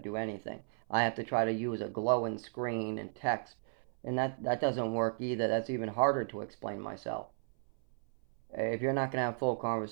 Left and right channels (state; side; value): silent; left; 55 dB below the other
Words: anything. I have to try to use a glowing screen and text. And that doesn't work either. That's even harder to explain myself. If you're not going to have full